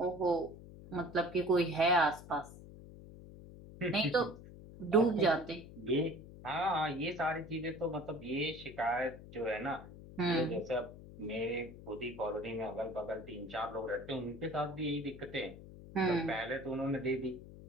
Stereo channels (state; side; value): noise; left; hum, 16 dB below the sound